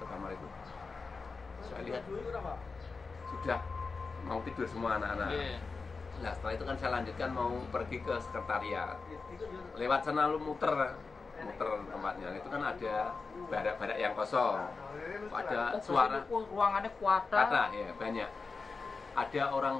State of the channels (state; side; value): quieter; right; 4.4 dB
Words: kamar itu. Saya lihat sudah mau tidur semua anak-anak. Nah, setelah itu kan saya lanjutkan mau pergi ke sekretariat. Lewat sana lu muter tempatnya. Itu kan ada barak-barak yang kosong. Ada suara ruangannya kata ya banyak. Ada